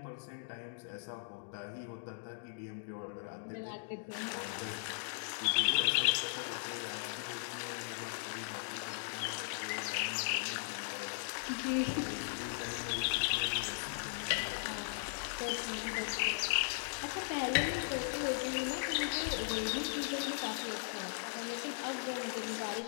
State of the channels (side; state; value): right; silent; digital silence